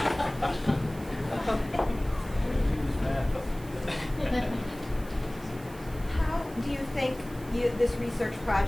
How do you think this research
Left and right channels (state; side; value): noise; right; hiss, 21 dB below the sound